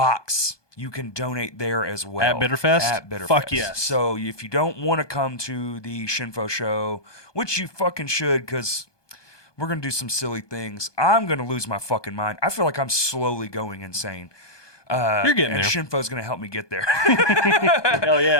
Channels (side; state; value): right; late; 1.2 ms